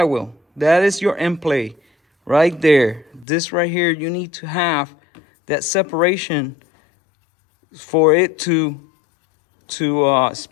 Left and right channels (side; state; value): right; drops out; at 3.2 s